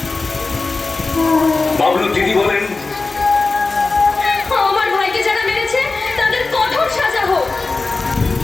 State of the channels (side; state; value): right; quieter; 3.7 dB